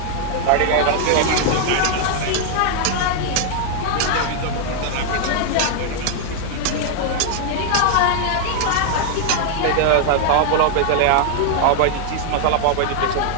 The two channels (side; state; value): both; different; correlation 0.00